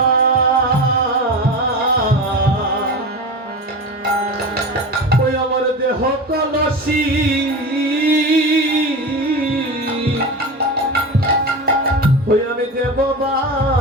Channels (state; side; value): normal; both; correlation 0.26